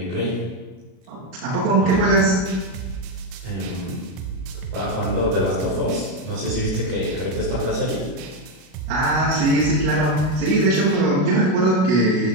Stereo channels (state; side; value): late; left; 32 ms